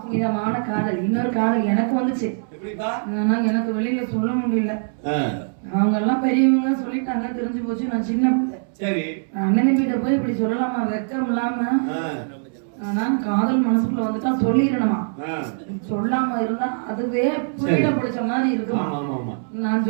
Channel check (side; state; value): left; silent; 64 dB below the other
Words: காதல். இன்னொரு காதல் எனக்கு வந்துச்சு. ஆனா எனக்கு வெளியில சொல்ல முடியல. அவங்க எல்லாம் பெரியவங்க சொல்லிட்டாங்க, தெரிஞ்சு போச்சு. நான் சின்ன பிள்ளை. சரி, அண்ணன் கிட்ட போய் இப்படி சொல்லலாமா? வெக்கம் இல்லாம. ஆனா காதல் மனசுக்குள்ள வந்துட்டா சொல்லிடணுமா? சொல்லாம இருந்தா அதுவே புரியல பிடிச்ச மாதிரி இருக்குமா? நான்